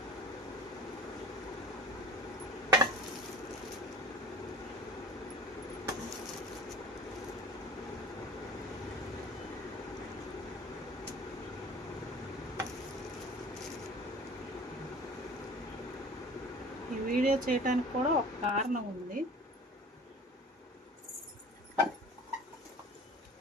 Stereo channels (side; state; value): both; normal; correlation 0.42